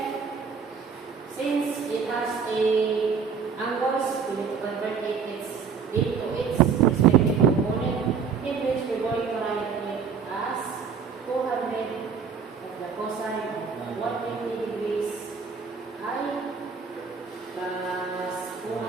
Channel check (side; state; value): left; quieter; 6.0 dB